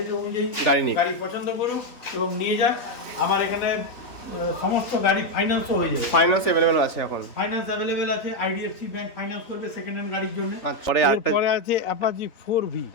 অনুযায়ী গাড়ি নিক। গাড়ি পছন্দ করুক এবং নিয়ে যাক। আমার এখানে সমস্ত গাড়ি ফাইন্যান্সও হয়ে যাবে। ফাইন্যান্স अवेलेबल আছে এখন? ফাইন্যান্স অ্যাভেলেবেল আছে, IDFC ব্যাংক ফাইন্যান্স করবে সেকেন্ড হ্যান্ড গাড়ির জন্য। আচ্ছা, পরে আরেকটা এরপরে আছে অ্যাপাচি 4V,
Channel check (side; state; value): right; late; 3.5 ms